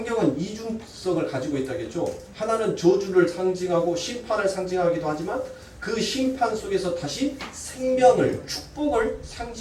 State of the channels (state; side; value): identical; both; correlation 1.00